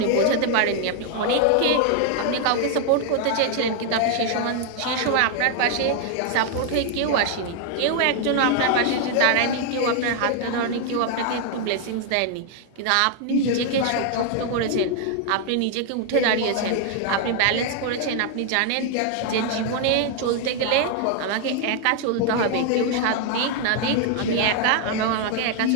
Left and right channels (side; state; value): both; different; correlation 0.00